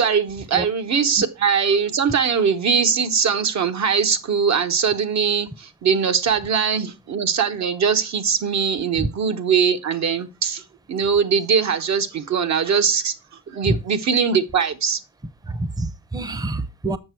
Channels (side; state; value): left; quieter; 5.9 dB